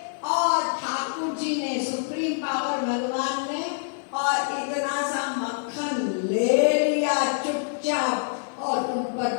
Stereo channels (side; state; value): right; silent; 56 dB below the other